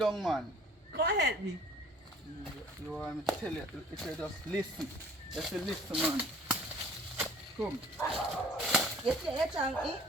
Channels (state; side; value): normal; both; correlation 0.51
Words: man. Come help me. You want me to tell you, if you just listen. Just listen, man. Come. You say you